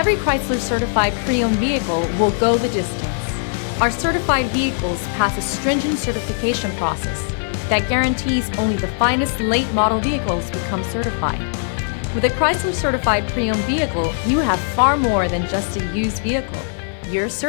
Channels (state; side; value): silent; right; 66 dB below the other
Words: Chrysler certified pre-owned vehicle will go the distance. Our certified vehicles pass a stringent certification process that guarantees only the finest late model vehicles become certified. With a Chrysler certified pre-owned vehicle, you have far more than just a used vehicle. You're